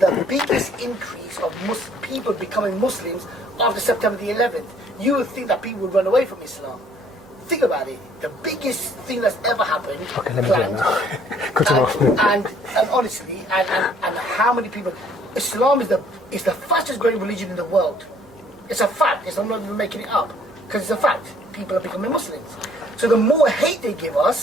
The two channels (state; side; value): normal; both; correlation 0.61